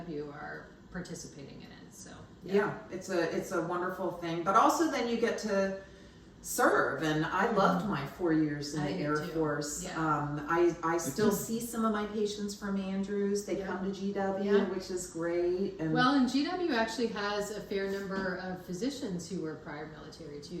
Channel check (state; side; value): identical; both; correlation 1.00